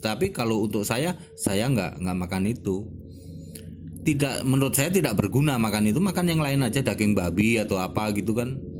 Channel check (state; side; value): identical; both; correlation 1.00